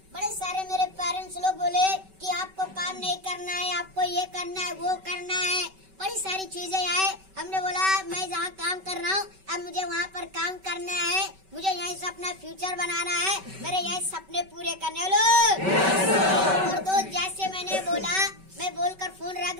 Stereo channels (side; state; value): left; late; 5.2 ms